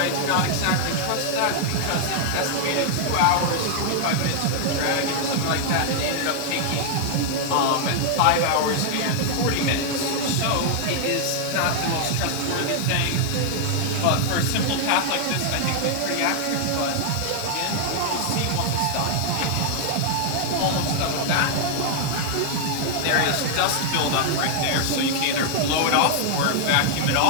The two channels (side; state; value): both; different; correlation 0.00